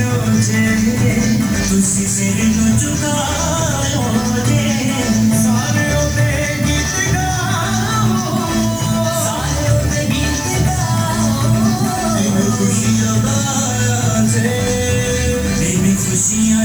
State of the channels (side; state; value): right; noise; hiss, 17 dB below the sound